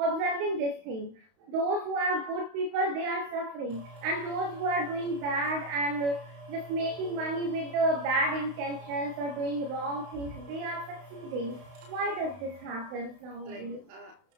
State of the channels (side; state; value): left; late; 32 ms